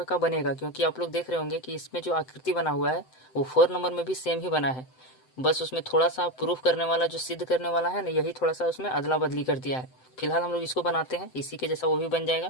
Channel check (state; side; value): late; right; 7.8 ms